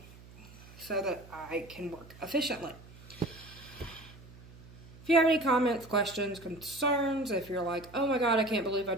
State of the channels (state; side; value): noise; right; hum, 20 dB below the sound